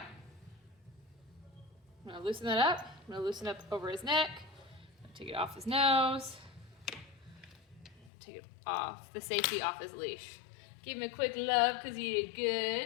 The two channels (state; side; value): drops out; right; at 8.1 s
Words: I'm going to loosen that up. I'm going to loosen up over his neck. Take it off his nose. Take it off, the safety off his leash. Give him a quick love because he did